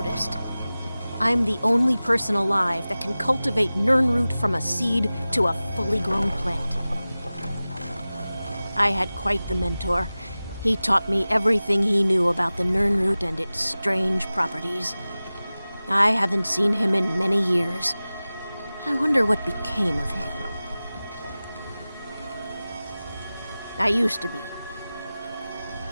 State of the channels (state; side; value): inverted; both; correlation -0.97